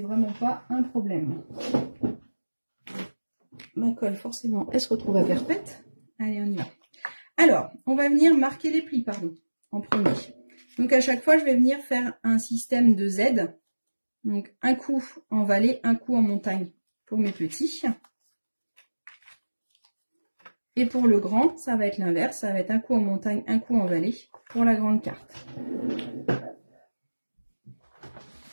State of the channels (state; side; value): inverted; both; correlation -1.00